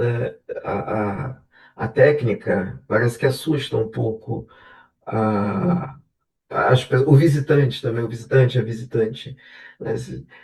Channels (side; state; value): both; identical; correlation 1.00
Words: A, a, a técnica parece que assusta um pouco uhum, o visitante também, o visitante, a visitante, né?